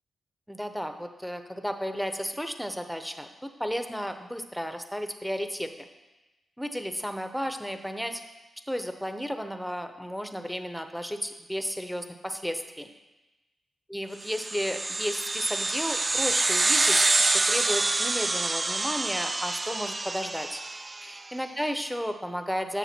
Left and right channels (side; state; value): both; normal; correlation 0.97